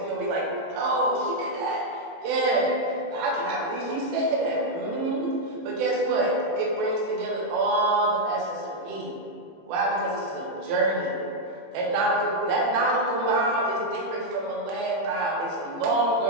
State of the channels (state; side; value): late; left; 18 ms